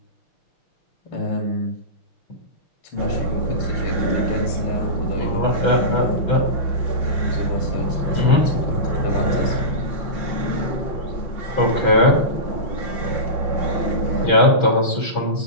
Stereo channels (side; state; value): right; late; 6.1 ms